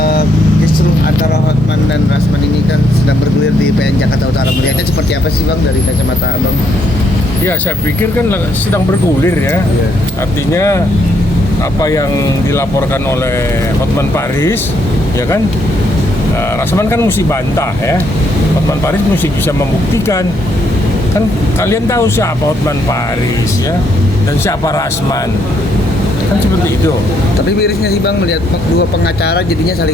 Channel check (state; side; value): normal; both; correlation 0.73